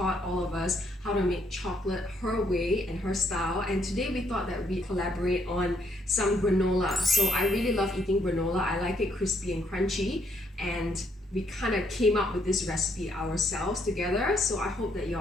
all of us how to make chocolate her way and her style, and today we thought that we'd collaborate on some granola. So I really love eating granola. I like it crispy and crunchy, and we kind of came up with this recipe ourselves together, so I hope that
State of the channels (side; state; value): both; normal; correlation 0.72